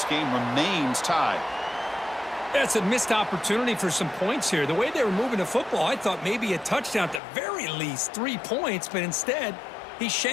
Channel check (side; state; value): right; drops out; at 7.2 s